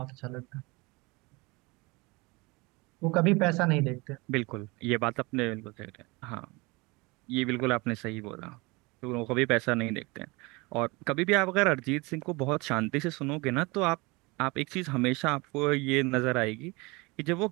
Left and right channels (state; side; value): quieter; left; 25.4 dB